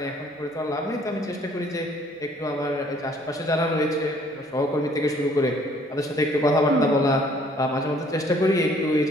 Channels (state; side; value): normal; both; correlation 0.60